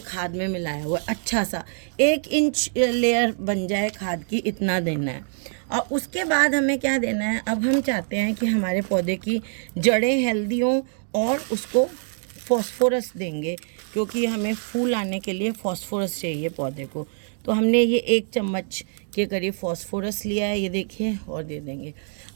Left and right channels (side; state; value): left; silent; 62 dB below the other